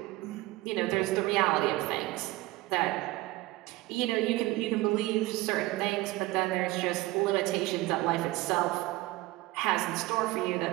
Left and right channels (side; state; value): left; quieter; 19.1 dB